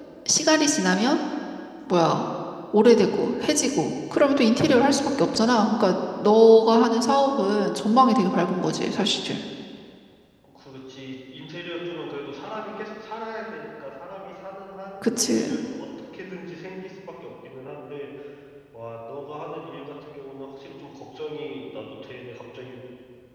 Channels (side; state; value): both; identical; correlation 1.00